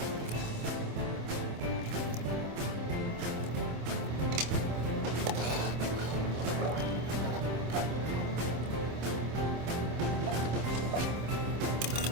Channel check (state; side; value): late; left; 26 ms